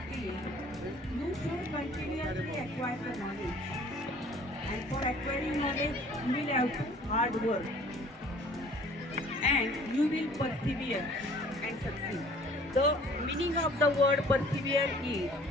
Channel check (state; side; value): normal; both; correlation 0.53